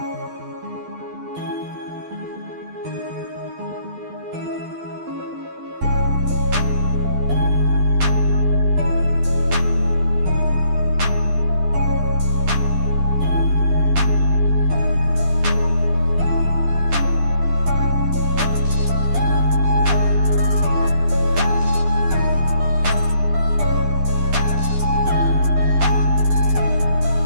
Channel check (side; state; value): left; late; 12 ms